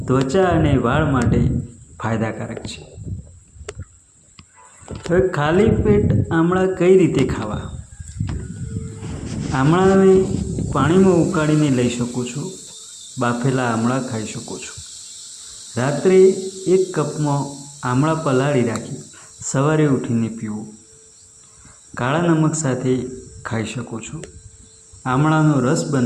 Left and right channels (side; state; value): both; identical; correlation 1.00